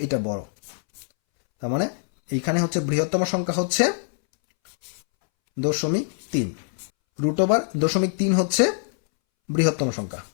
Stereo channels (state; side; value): silent; right; 63 dB below the other